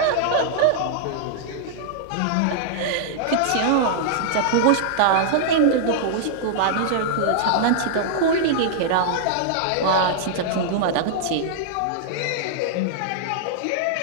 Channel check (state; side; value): different; both; correlation -0.01